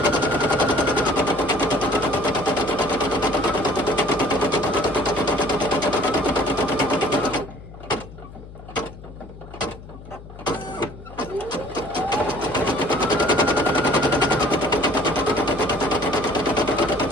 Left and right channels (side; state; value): left; noise; hum, 16 dB below the sound